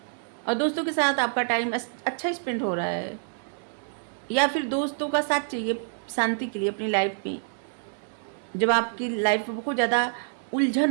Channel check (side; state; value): left; silent; digital silence